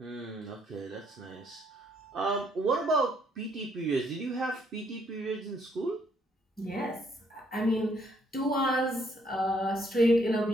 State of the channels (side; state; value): both; normal; correlation 0.69